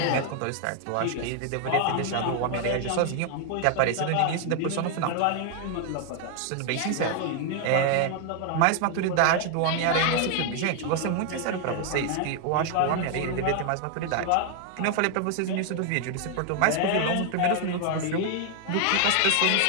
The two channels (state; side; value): different; both; correlation 0.00